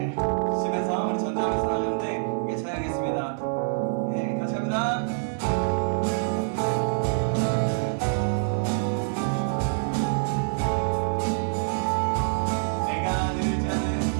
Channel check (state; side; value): silent; left; 56 dB below the other